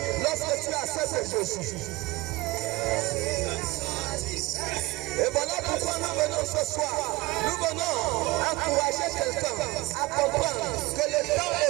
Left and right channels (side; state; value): left; quieter; 21.2 dB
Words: lorsque tu acceptes Jésus. Et voilà pourquoi nous venons ce soir. Nous venons encourager quelqu'un à comprendre que le temps